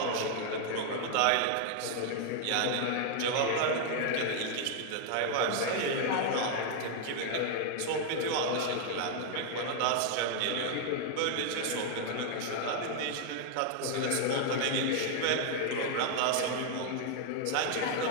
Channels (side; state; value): both; different; correlation 0.00